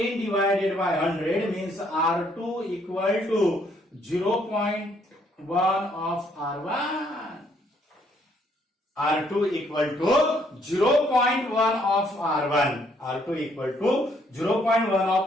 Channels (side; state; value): both; normal; correlation 0.68